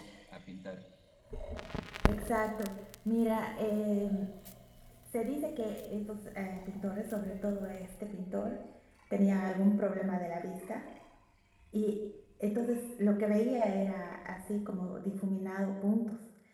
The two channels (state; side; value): identical; both; correlation 1.00